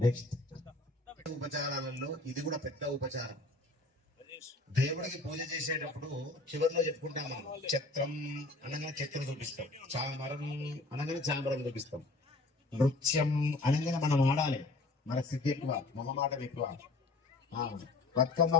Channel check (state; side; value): quieter; right; 3.1 dB